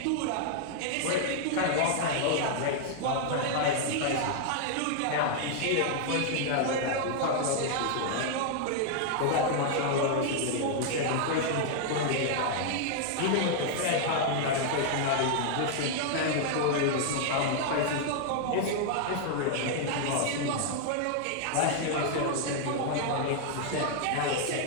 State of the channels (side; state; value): both; different; correlation 0.00